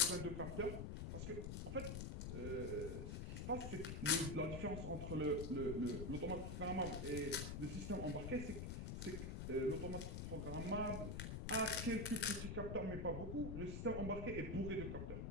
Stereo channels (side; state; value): left; noise; rumble, 4 dB below the sound